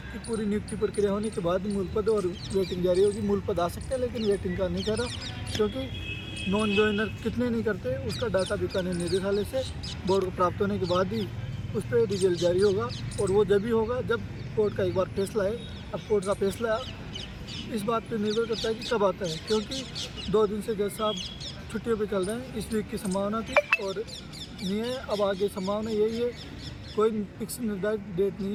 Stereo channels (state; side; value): identical; both; correlation 1.00